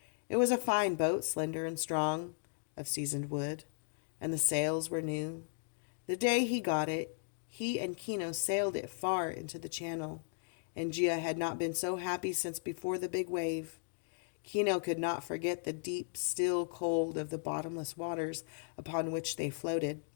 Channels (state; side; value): silent; right; digital silence